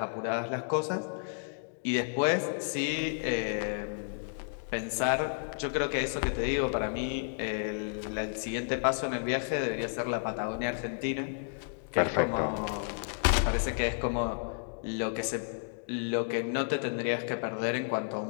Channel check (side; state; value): right; silent; digital silence